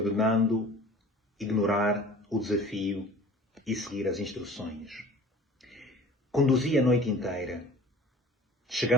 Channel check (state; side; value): normal; both; correlation 0.44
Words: ignorar o desafio e seguir as instruções. Conduzi a noite inteira,